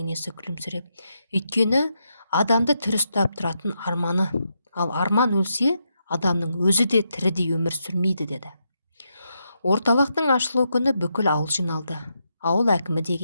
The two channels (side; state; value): both; inverted; correlation -0.82